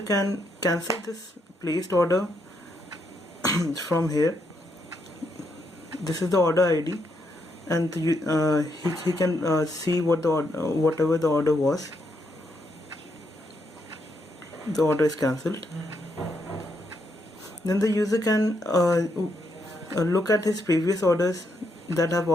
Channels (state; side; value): normal; both; correlation 0.78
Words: cancel this placed order from here. This is the order ID, and he can see what the whatever the order was. The order is cancelled. Then the user can look at his previous orders that have